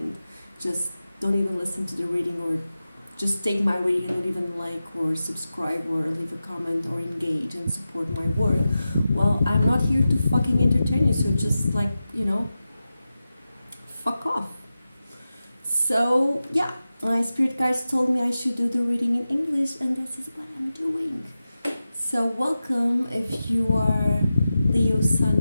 just don't even listen to the reading, or just take my reading and don't even like or subscribe or leave a comment or engage and support my work, well, I'm not here to fucking entertain you, so just fuck off. So yeah, my spirit guides told me I should do the reading in English, and this is what I'm doing. So welcome if you are Leo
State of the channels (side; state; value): both; inverted; correlation -0.93